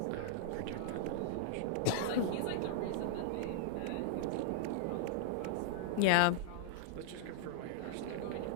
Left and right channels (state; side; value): different; both; correlation -0.01